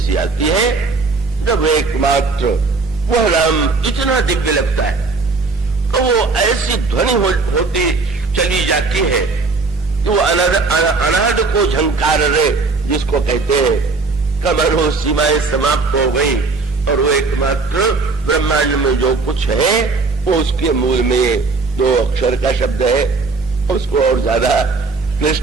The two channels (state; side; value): quieter; left; 4.1 dB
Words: आती है जब एकमात्र वह नाम इतना दिव्य लगता है तो वो ऐसी ध्वनि होती चली जाती है जो अनाद को झंकार रे, जिसको कहते हैं, कमरों सीमाएं समाप्त हो गई, और वो एकमात्र ब्रह्मांड में जो कुछ है वो उसके मूल में 2 अक्षर का शब्द है। उसको और ज्यादा